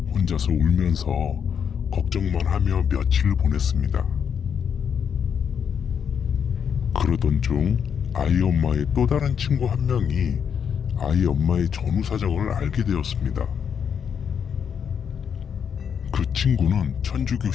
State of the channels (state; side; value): quieter; right; 7.4 dB